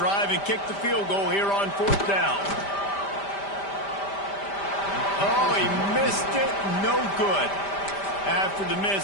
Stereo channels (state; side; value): late; right; 5.1 ms